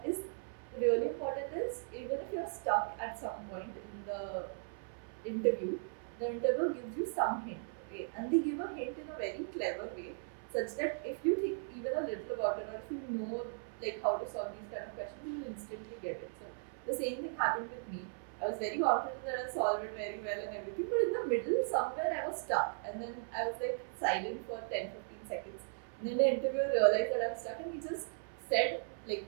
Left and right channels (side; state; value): left; silent; 53 dB below the other